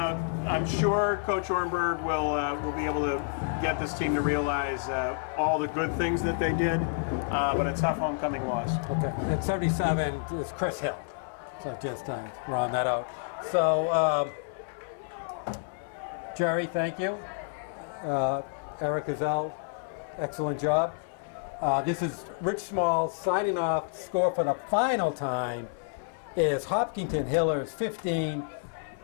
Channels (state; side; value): silent; right; 58 dB below the other